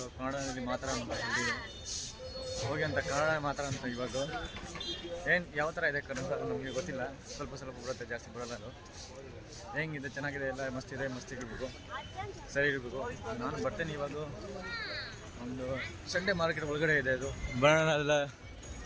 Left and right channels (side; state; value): both; identical; correlation 1.00